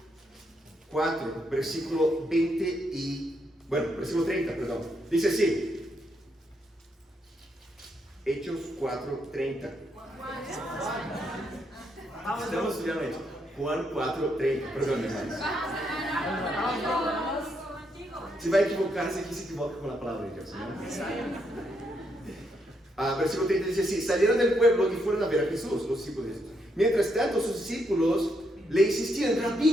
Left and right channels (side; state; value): both; normal; correlation 0.78